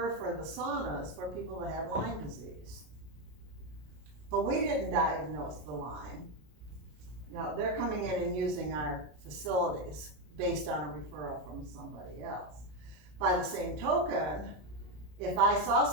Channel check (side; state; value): left; late; 33 ms